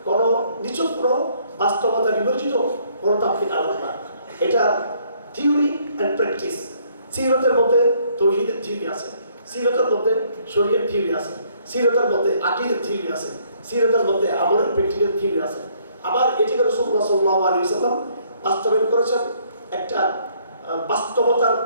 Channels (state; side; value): inverted; both; correlation -0.65